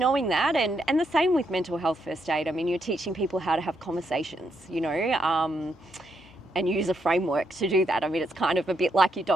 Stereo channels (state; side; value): normal; both; correlation 0.78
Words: that. And the same with mental health first aid. I mean, you're teaching people how to have conversations, you know, and use a framework to do that. I mean, it's kind of a bit like your